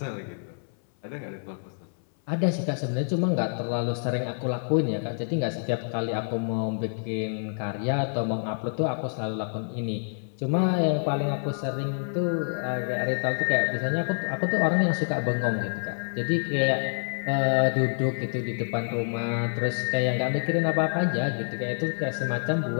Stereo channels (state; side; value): silent; right; 59 dB below the other